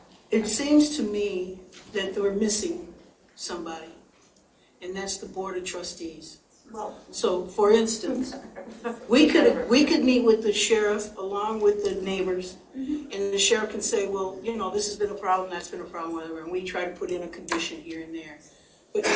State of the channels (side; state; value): both; identical; correlation 1.00